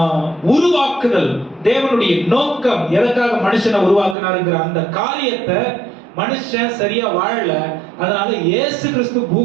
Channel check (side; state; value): left; drops out; at 4.2 s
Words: உருவாக்குதல் தேவனுடைய நோக்கம், எதற்காக மனுஷனை உருவாக்குனாருங்கிற அந்த காரியத்தை மனுஷன் சரியா வாழல. அதனால இயேசு கிறிஸ்து